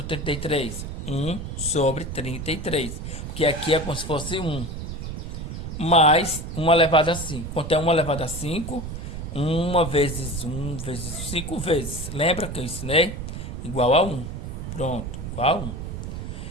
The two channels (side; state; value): right; noise; rumble, 7 dB below the sound